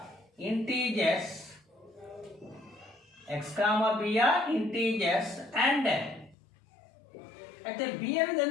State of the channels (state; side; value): drops out; right; at 6.4 s